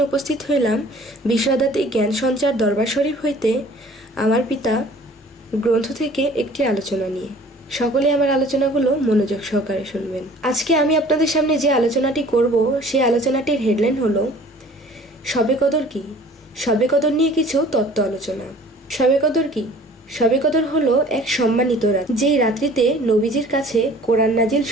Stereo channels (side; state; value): both; normal; correlation 0.49